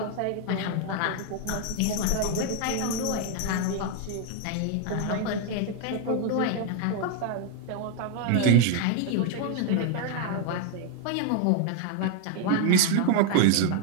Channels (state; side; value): different; both; correlation 0.01